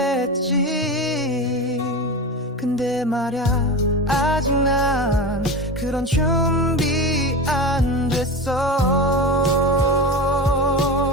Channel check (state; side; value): normal; both; correlation 0.25